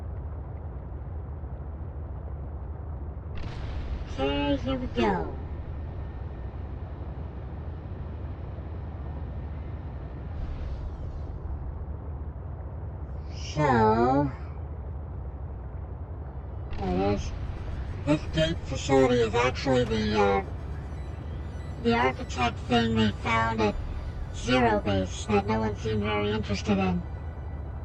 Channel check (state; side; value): identical; both; correlation 1.00